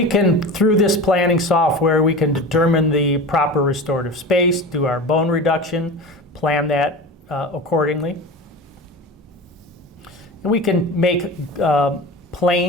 can, through this planning software, we can determine the proper restorative space, do our bone reduction, plan that accordingly. And we can make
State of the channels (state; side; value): normal; both; correlation 0.31